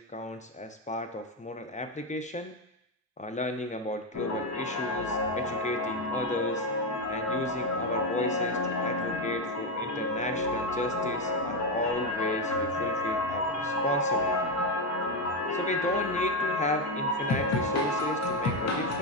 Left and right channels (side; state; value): both; normal; correlation 0.09